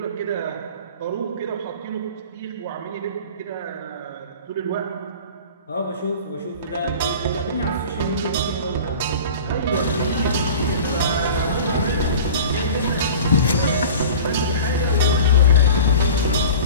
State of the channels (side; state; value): both; inverted; correlation -0.39